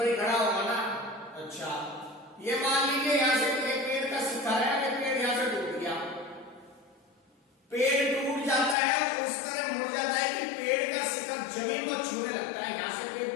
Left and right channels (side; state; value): right; drops out; at 8.8 s